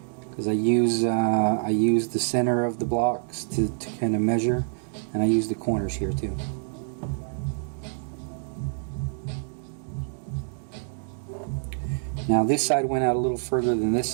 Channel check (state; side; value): silent; left; digital silence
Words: Because I use the center of the blocks to kind of measure, and I use the corners here too. Now this side went out a little further than this